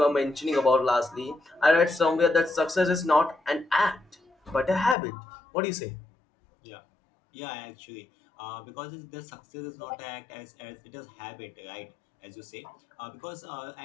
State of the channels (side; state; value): right; drops out; at 5.0 s